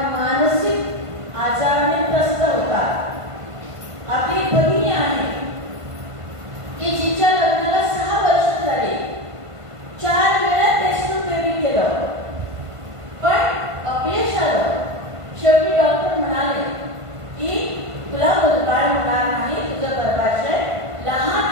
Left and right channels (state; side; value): late; left; 1.5 ms